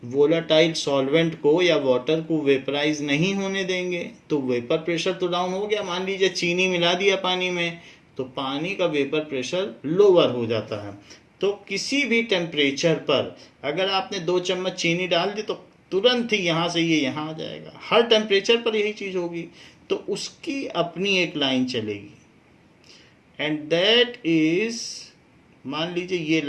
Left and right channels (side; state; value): both; identical; correlation 1.00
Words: वोलेटाइल सॉल्वेंट को या वाटर को वेपराइज नहीं होने देंगे तो वेपर प्रेशर तो डाउन हो गया। मान लीजिए चीनी मिला दिया पानी में तो पानी का वेपर प्रेशर लोअर हो जाता है। तो किसी भी टेम्परेचर पर अगर आपने 2 चम्मच चीनी डाल दी तो तुरंत ही यहाँ से ये यहाँ आ जाएगा। हर टेम्परेचर पर यही चीज़ होगी। तो उसकी अपनी एक लाइन चलेगी एंड दैट इज, मान लीजिए ये